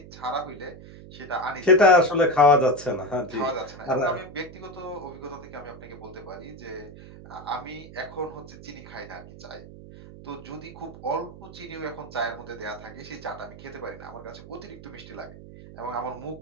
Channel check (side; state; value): right; noise; hum, 16 dB below the sound